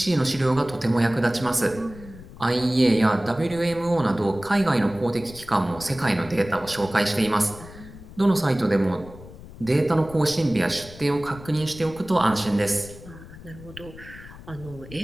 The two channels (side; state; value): left; noise; rumble, 17 dB below the sound